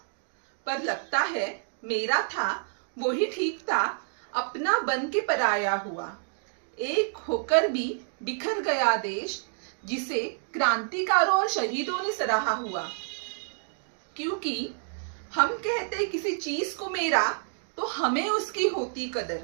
पर लगता है मेरा था वो ही ठीक था। अपना बन के पराया हुआ। एक होकर भी बिखर गया देश, जिसे क्रांतिकारों और शहीदों ने सराहा हुआ। क्योंकि हम कहते किसी चीज को मेरा, तो हमें उसकी होती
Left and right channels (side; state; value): left; silent; digital silence